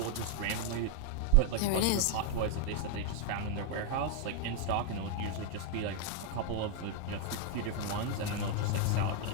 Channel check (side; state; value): both; different; correlation 0.00